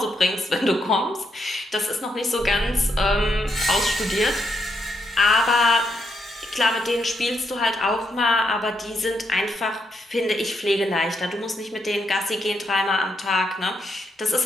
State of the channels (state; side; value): normal; both; correlation 0.79